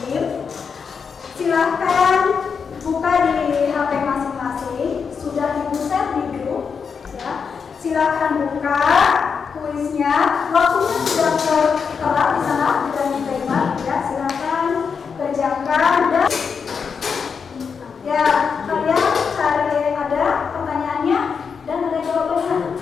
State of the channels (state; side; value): quieter; right; 6.0 dB